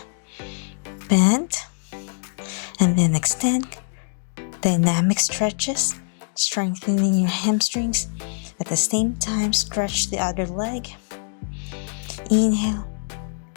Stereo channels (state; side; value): silent; right; digital silence